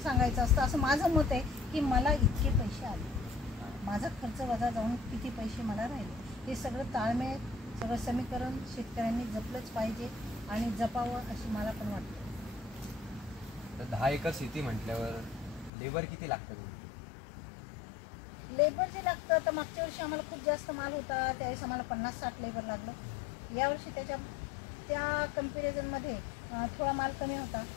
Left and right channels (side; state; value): right; drops out; at 15.7 s